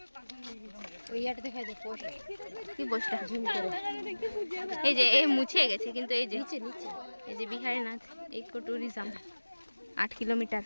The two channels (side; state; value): both; inverted; correlation -1.00